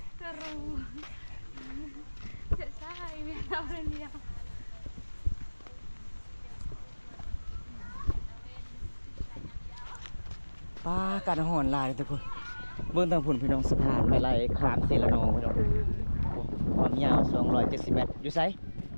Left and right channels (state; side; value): inverted; both; correlation -1.00